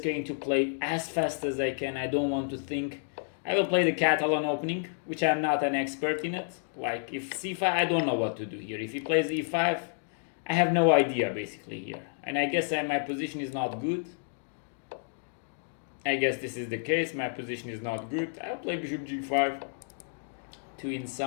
going to play as fast as I can. I don't want to think. I will play the Catalan opening, which I'm not an expert in it. Like if c5, I don't know what to do here. If he plays e5, I have no idea basically here. And I guess my position is not good. I guess this is the case. My position is not good. I'll play bishop g5 to, in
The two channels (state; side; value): silent; right; digital silence